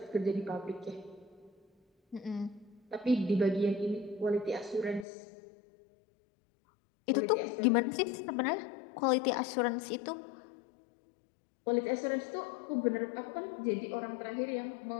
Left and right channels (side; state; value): right; drops out; at 5.1 s